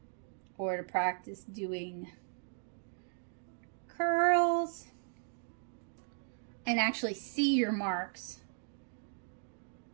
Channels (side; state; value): left; silent; digital silence